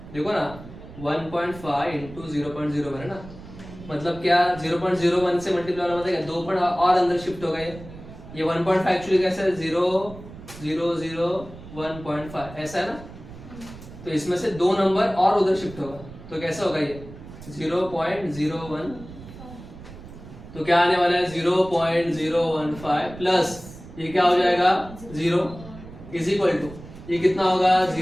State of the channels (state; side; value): noise; right; rumble, 16 dB below the sound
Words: देखो ना 1.5 इंटू 0.01 है ना, मतलब क्या 0.01 से मल्टीप्लाई होना मतलब 2 पॉइंट और अंदर शिफ्ट होगा। ये 1.5 एक्चुअली कैसा है 0.001.5 ऐसा है ना। तो इसमें से 2 नंबर और उधर शिफ्ट होगा तो कैसा होगा ये 0.01, तो क्या आने वाला है 0.015 प्लस ये क्या हो जाएगा 0 इज इक्वल टू ये कितना होगा